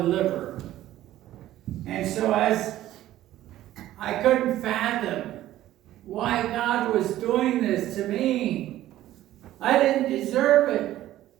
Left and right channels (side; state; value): left; quieter; 14.0 dB